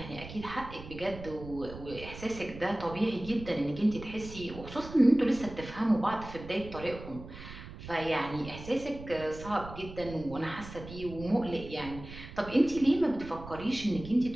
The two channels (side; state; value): right; noise; rumble, 13 dB below the sound